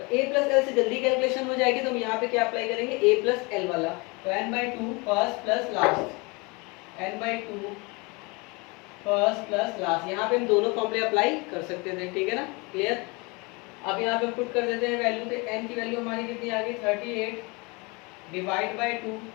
a प्लस एल से जल्दी कैलकुलेशन हो जाएगी, तो हम यहाँ पे क्या अप्लाई करेंगे a प्लस एल वाला, तो n/2 first plus last, n/2 first plus last, यहाँ पे हम दोनों फॉर्मूले अप्लाई कर सकते थे, ठीक है ना, क्लियर। अब यहाँ पे हम पुट कर देते हैं वैल्यू, तो n की वैल्यू हमारी कितनी आ गई 38 डिवाइड बाय 2,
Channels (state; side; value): quieter; right; 27.4 dB